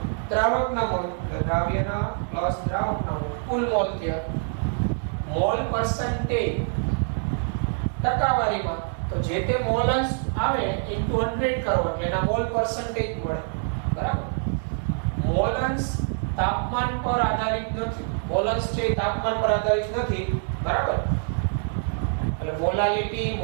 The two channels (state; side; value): silent; left; digital silence